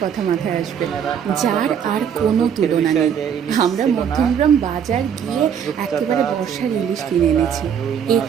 কথা মাথায় আসবে, যার আর কোনো তুলনা নেই। আমরা মধ্যমগ্রাম বাজার গিয়ে একেবারে বর্ষার ইলিশ কিনে এনেছি।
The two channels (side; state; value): left; quieter; 8.1 dB